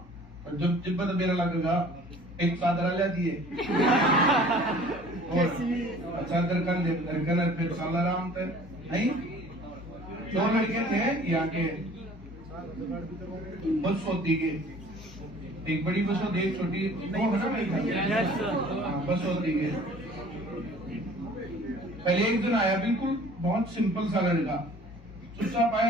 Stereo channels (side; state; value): both; normal; correlation 0.50